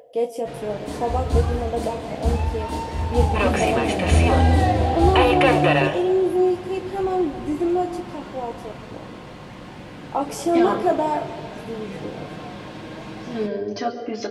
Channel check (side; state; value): both; identical; correlation 1.00